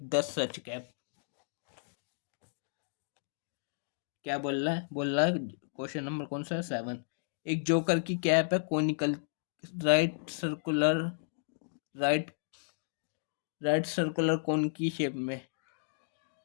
10 such cap. क्या बोल रहा है क्वेश्चन नंबर कौन सा है, 7। एक जोकर की कैप है, conical, right circular, right right circular cone की शेप में।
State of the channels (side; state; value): right; silent; digital silence